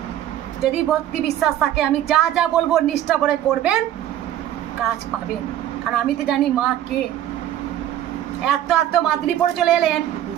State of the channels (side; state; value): left; quieter; 12.0 dB